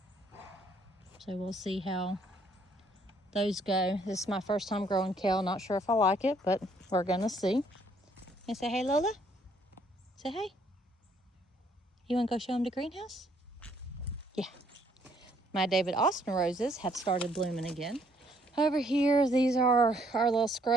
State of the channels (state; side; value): normal; both; correlation 0.66